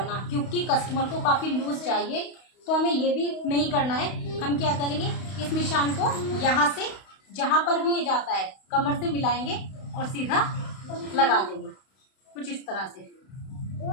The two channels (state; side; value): late; right; 32 ms